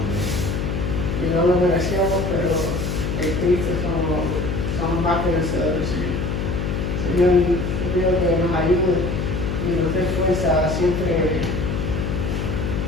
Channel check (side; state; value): left; noise; hum, 1 dB below the sound